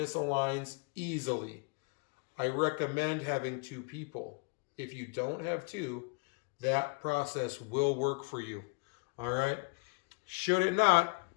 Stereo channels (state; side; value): quieter; right; 33.1 dB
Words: easily. I recommend having two people. If you don't have two, that process will work for you. All right? Should it not,